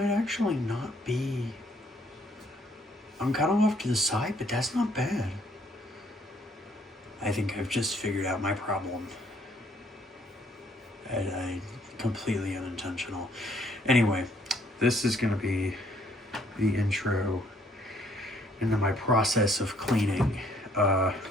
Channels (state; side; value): normal; both; correlation 0.65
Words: actually not be... I'm kind of off to the side, but that's not bad. I think I've just figured out my problem. And I completely unintentional. Anyway, this is going to be the intro into my process of cleaning.